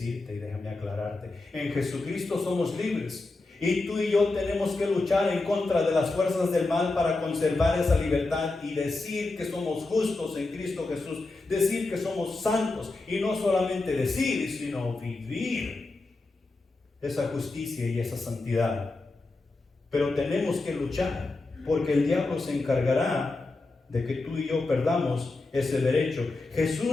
y déjame aclararte. En Jesucristo somos libres. Y tú y yo tenemos que luchar en contra de las fuerzas del mal para conservar esa libertad y decir que somos justos en Cristo Jesús, decir que somos santos, y no solamente decir, sino vivir esa justicia y esa santidad. Pero tenemos que luchar, porque el diablo se encargará de que tú y yo perdamos ese derecho.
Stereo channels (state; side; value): quieter; right; 3.3 dB